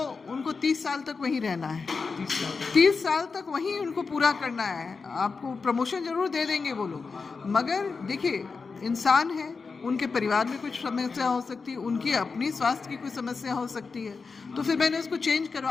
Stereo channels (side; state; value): right; quieter; 4.7 dB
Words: उनको 30 साल तक वहीं रहना है। 30 साल तक वहीं उनको पूरा करना है। आपको प्रमोशन ज़रूर दे देंगे वो लोग, मगर देखिए इंसान है, उनके परिवार में कुछ समस्या हो सकती है, उनकी अपनी स्वास्थ्य की कोई समस्या हो सकती है। तो फिर मैंने उसको चेंज